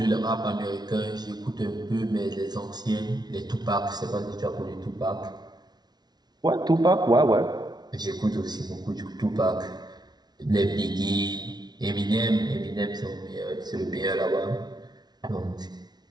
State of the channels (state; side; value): late; left; 0.19 ms